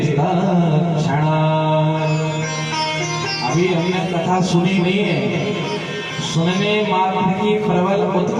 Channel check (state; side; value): identical; both; correlation 1.00